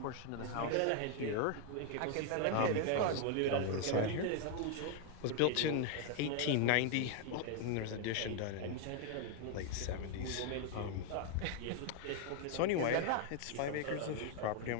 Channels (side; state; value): both; different; correlation 0.00